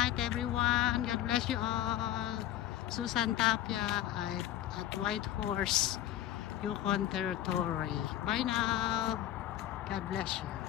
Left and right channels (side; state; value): right; quieter; 12.6 dB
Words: everyone. God bless you all. Susan Tapia at White Horse, Yukon Territory. Bye now. God bless you.